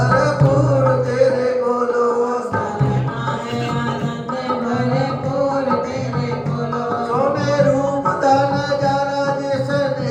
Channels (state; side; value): identical; both; correlation 1.00